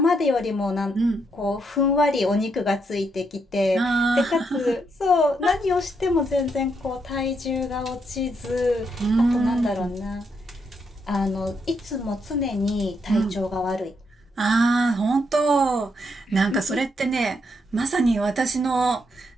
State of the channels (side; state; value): both; normal; correlation 0.78